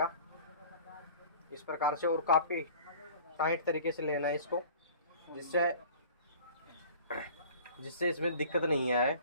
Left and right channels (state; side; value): inverted; both; correlation -0.44